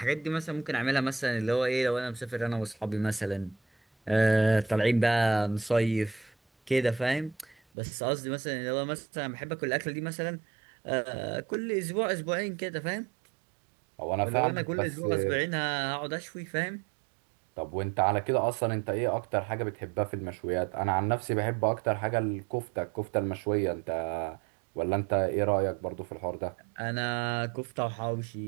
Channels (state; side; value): drops out; left; at 7.6 s